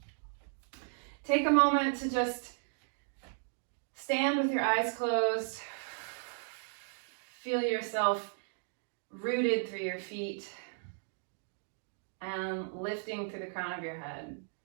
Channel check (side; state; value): left; silent; digital silence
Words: Take a moment to just stand with your eyes closed. Feel yourself rooted through your feet and lifting through the crown of your head.